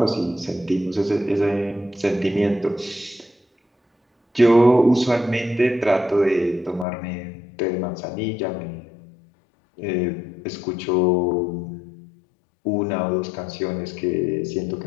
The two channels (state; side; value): drops out; right; at 6.9 s